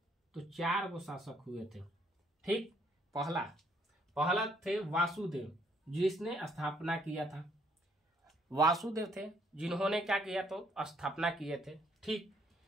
तो 4 गो शासक हुए थे, ठीक। पहला थे वासुदेव, जिसने स्थापना किया था। वासुदेव थे जिन्होंने क्या किया? तो स्थापना किए थे, ठीक।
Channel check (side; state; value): both; normal; correlation 0.68